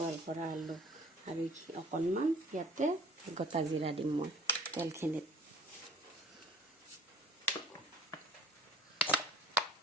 কৰা আলু আৰু অকণমান ইয়াতে গোটা জিৰা দিম মই তেলখিনিত।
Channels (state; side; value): normal; both; correlation 0.49